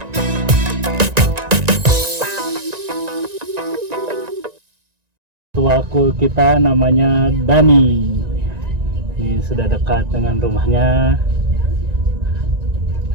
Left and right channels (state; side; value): late; left; 1.9 ms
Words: Ketua cool kita namanya Dani. Ini sudah dekat dengan rumahnya.